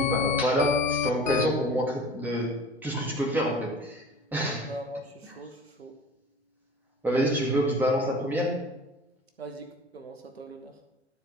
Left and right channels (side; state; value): both; normal; correlation 0.41